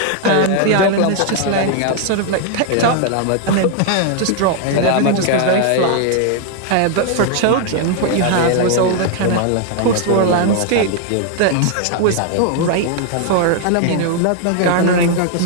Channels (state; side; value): different; both; correlation 0.00